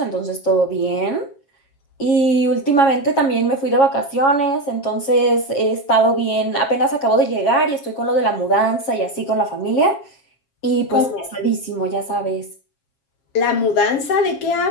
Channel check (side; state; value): right; late; 7.4 ms